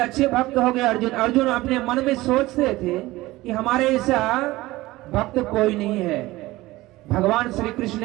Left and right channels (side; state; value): left; quieter; 18.7 dB